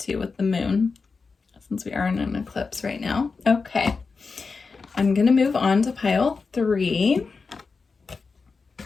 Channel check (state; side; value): quieter; right; 4.6 dB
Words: with the moon. since we are in an eclipse right now. Okay. I'm going to move on to pile 3.